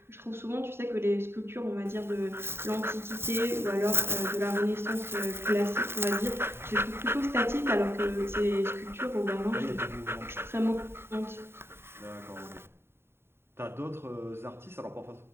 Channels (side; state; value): left; late; 0.11 ms